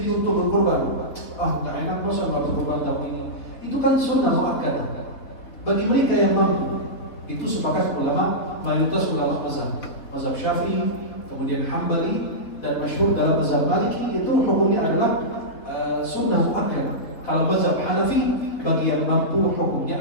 untuk berkurban. Nggak enak masa nggak berkurban tahun ini. Itu kan sunnah muakkad. Bagi mereka yang mampu, itu sepakat ulama, mayoritas ulama mazhab Syafi'i, kemudian Hambali, dan masyhur dalam mazhab Maliki, itu hukumnya adalah sunnah muakkad. Kalau mazhab Hanafi, bagi yang mampu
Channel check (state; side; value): late; right; 4.0 ms